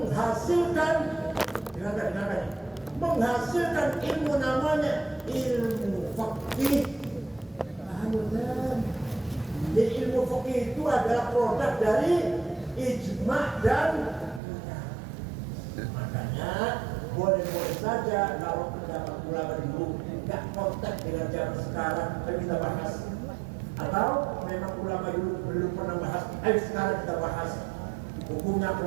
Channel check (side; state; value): left; drops out; at 14.4 s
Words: menghasilkan ilmu namanya ilmu fikih. Jadi ilmu fikih itu adalah produk dari ijma' dan kias. Makanya boleh-boleh saja kalau pendapat ulama dulu nggak konteks dengan zaman sekarang kita bahas. Atau memang ulama dulu belum pernah bahas, ayo sekarang kita bahas hukumnya